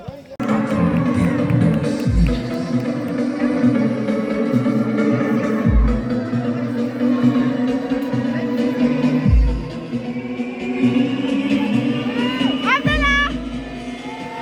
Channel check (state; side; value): identical; both; correlation 1.00